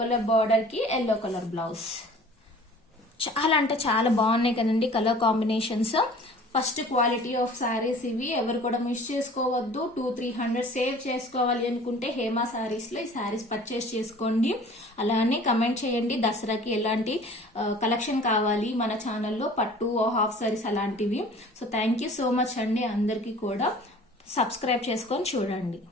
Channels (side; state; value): both; normal; correlation 0.47